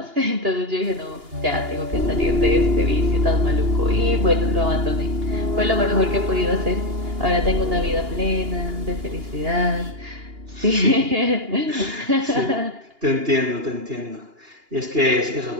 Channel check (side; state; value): left; late; 2.8 ms